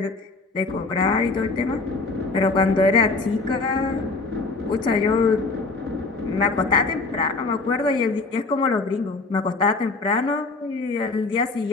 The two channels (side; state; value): right; quieter; 3.7 dB